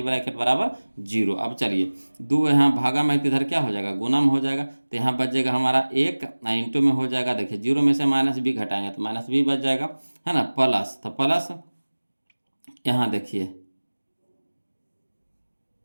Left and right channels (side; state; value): both; inverted; correlation -1.00